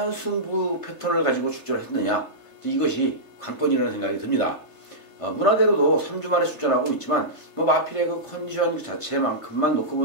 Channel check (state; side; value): late; left; 3.3 ms